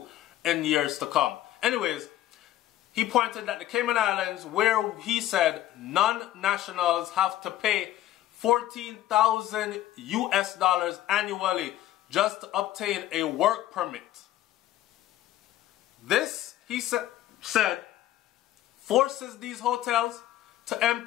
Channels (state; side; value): quieter; right; 13.6 dB